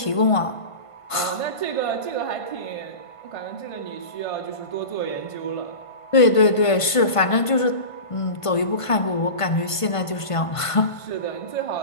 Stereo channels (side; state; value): right; late; 1.5 ms